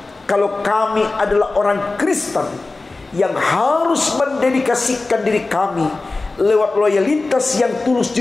kalau kami adalah orang Kristen yang harus mendedikasikan diri kami lewat loyalitas yang tulus,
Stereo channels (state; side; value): quieter; right; 3.4 dB